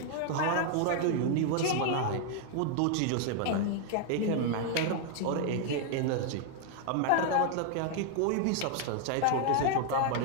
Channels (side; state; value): both; different; correlation 0.00